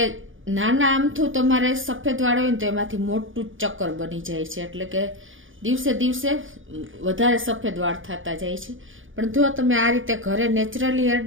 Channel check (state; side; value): late; left; 0.58 ms